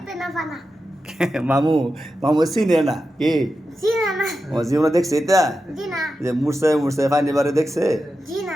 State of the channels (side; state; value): both; normal; correlation 0.90